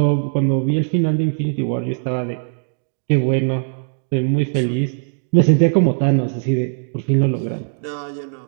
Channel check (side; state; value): left; silent; digital silence